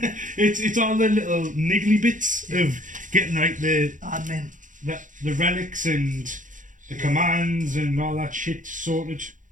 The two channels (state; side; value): late; left; 0.37 ms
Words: it's all the little niggly bits of getting like the admin, the relics and the commands and all that shit sorted.